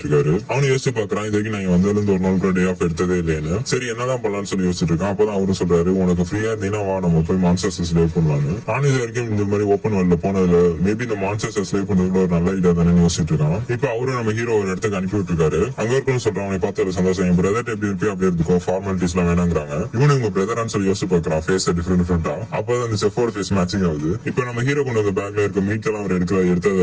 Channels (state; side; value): identical; both; correlation 1.00